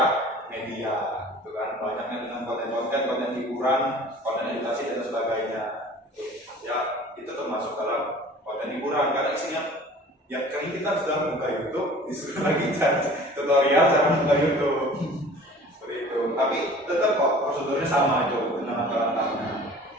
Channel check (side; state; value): both; normal; correlation 0.45